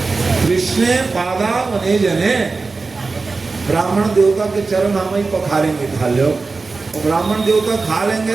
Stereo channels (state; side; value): quieter; left; 4.0 dB